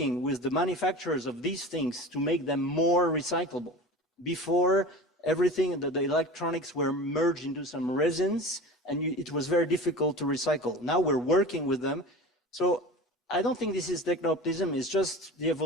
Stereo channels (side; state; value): both; normal; correlation 0.34